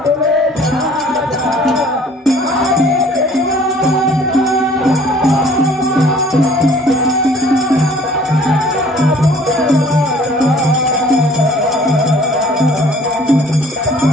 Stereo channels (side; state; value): both; normal; correlation 0.54